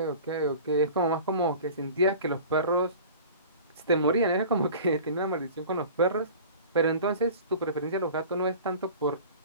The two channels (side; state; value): both; inverted; correlation -0.40